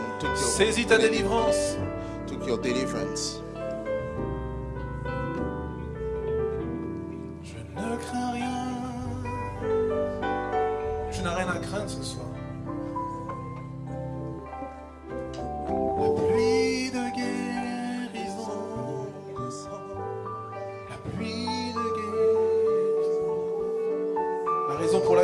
took your Saisis ta healing, délivrance. took your deliverance. Je ne crains rien. Tu n'as rien à craindre ce soir. La pluie de guérison descend. La pluie de guérison.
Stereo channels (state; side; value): identical; both; correlation 1.00